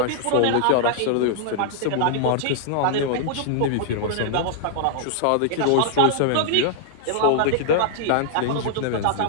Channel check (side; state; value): both; different; correlation -0.01